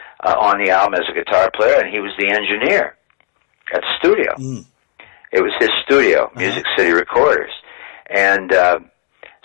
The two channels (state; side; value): quieter; right; 30.7 dB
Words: on the album as a guitar player, and he was the engineer at the studio. It was his studio, Music City Recorders. And